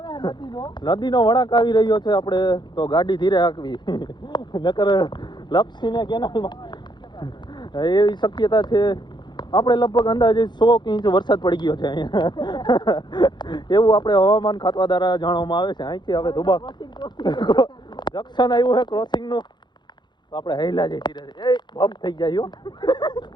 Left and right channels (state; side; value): late; right; 0.21 ms